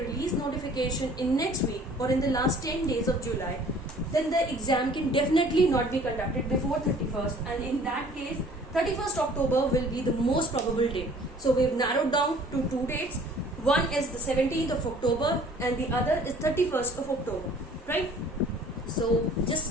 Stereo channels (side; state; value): both; normal; correlation 0.53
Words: notification in next week or in the last 10 days of July, then the exam can definitely not be conducted before 31st, and in that case 31st October will be the most probable date. So we've narrowed down to two dates. One is the 17th of October and the other is 31st of October, right? So